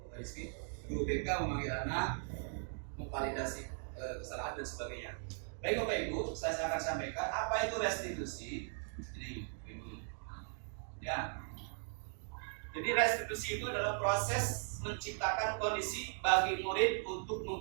Rizky, guru BK memanggil anak, memvalidasi kesalahan dan sebagainya. Baik Bapak Ibu, saya akan sampaikan apa itu restitusi. Ini Ibu. Ya. Jadi restitusi itu adalah proses menciptakan kondisi bagi murid untuk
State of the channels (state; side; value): silent; left; 52 dB below the other